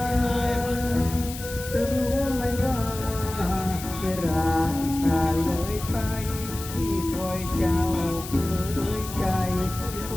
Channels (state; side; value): noise; left; hiss, 11 dB below the sound